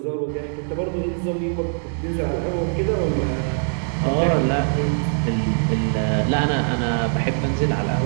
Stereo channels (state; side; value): silent; left; 64 dB below the other